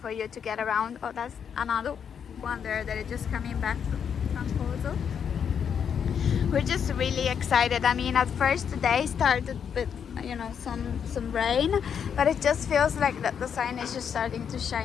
you to get around. Oh, that's another one there that is just coming back from Trancoso. We're just really excited. I mean, at first the day started with, some rain, but it just feels like that the sun is just starting to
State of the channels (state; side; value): quieter; right; 7.6 dB